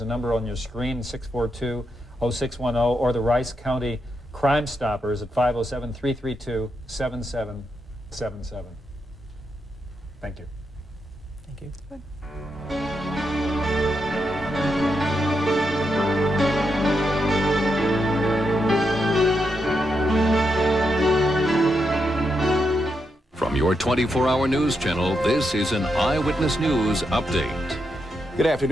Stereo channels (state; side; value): normal; both; correlation 0.83